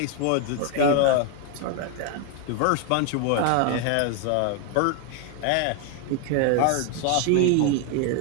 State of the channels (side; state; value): both; different; correlation 0.01